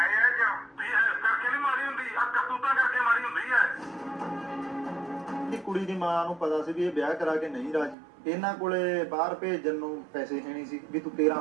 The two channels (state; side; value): drops out; left; at 8.0 s